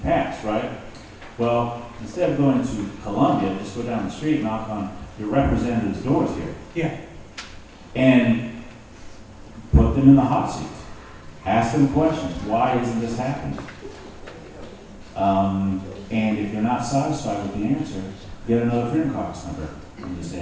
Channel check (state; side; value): identical; both; correlation 1.00